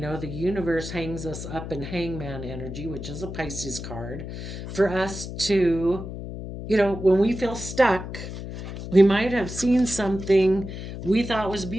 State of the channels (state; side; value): noise; left; hum, 8 dB below the sound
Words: universe hangs us up in hangman energy, which is a Pisces card, for us to, when we feel stuck, we might have seen something we thought was